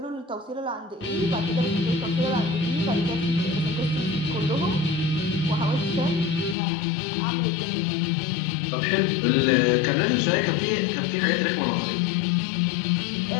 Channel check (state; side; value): drops out; right; at 6.6 s